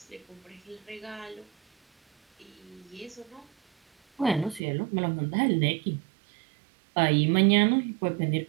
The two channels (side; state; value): left; drops out; at 4.6 s